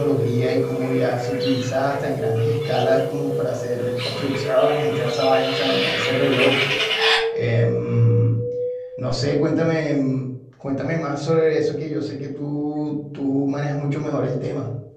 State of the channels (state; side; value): identical; both; correlation 1.00